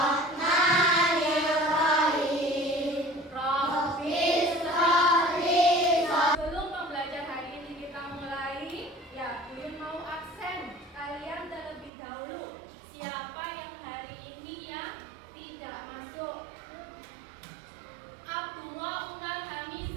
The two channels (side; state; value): left; drops out; at 11.9 s